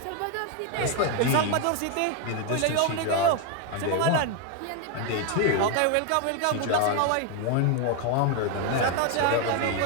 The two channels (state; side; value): different; both; correlation 0.01